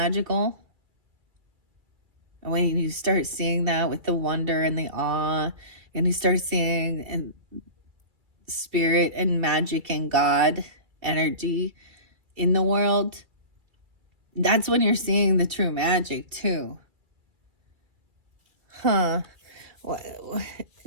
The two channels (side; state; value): left; late; 2.4 ms